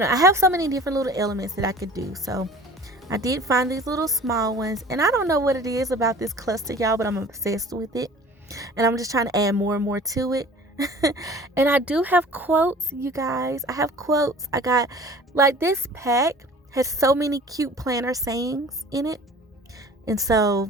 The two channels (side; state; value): both; normal; correlation 0.45